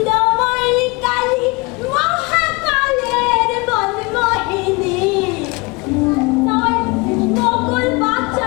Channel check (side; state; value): right; quieter; 27.0 dB